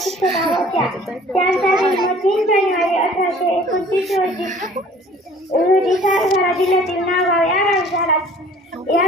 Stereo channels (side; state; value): both; normal; correlation 0.51